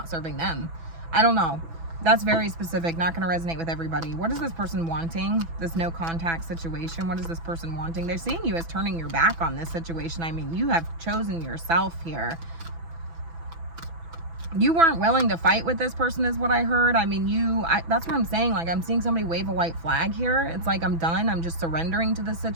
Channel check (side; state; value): left; late; 6.0 ms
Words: serving them. I don't know. That's very specific. Not going to resonate with everybody. What is this person wanting? This no contact situation. What is this person wanting? They're seeing you as turning your back on this situation. I mean, you have chosen yourself here. You weren't willing to fight with this person is what I heard. I mean, that's what I'm saying. Like, I'm seeing somebody wave a white flag here. It's like, I'm done. I'm just surrendering to this